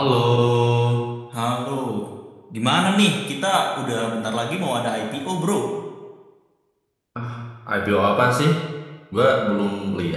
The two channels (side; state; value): both; identical; correlation 1.00